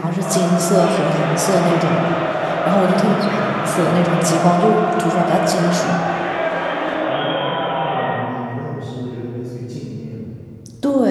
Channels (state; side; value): identical; both; correlation 1.00